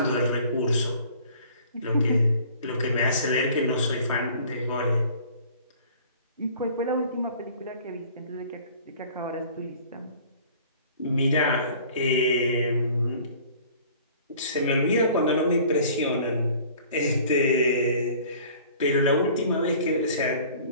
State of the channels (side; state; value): both; inverted; correlation -0.49